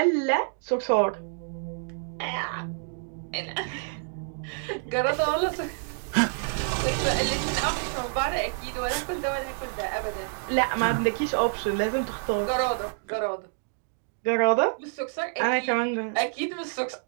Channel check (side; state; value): left; silent; 60 dB below the other